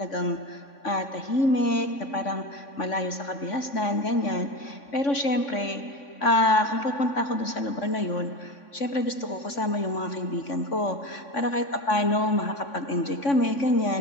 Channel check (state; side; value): late; right; 3.6 ms